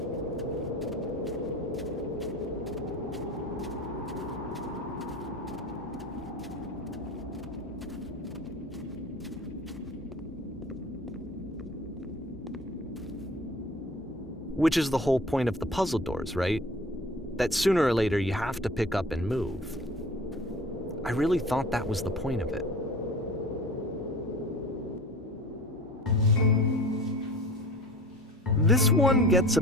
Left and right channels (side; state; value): both; normal; correlation 0.40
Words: Which is the whole point of the puzzle doors, right? That sooner or later you have to pick up and move. I really thought that was the point of it. This one gets a